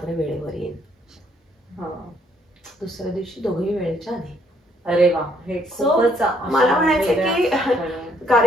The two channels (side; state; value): both; normal; correlation 0.68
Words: वेळेवर येईन. दुसऱ्या दिवशी दोघेही वेळेच्या आधी. अरे वा, हे खूपच. मला म्हणायचं की